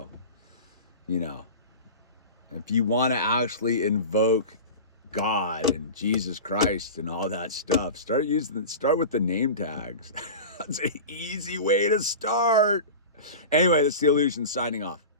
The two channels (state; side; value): inverted; both; correlation -0.31